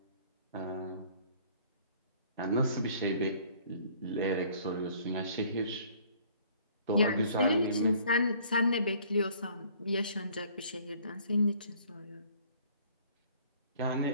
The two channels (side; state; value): both; inverted; correlation -0.56